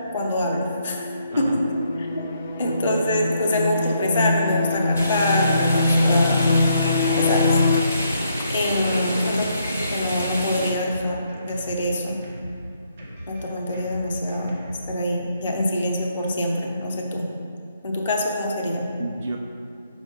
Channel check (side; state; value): both; inverted; correlation -0.74